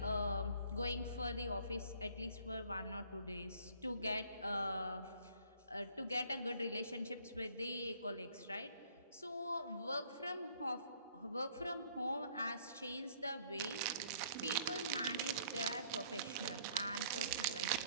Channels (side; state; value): both; inverted; correlation -0.59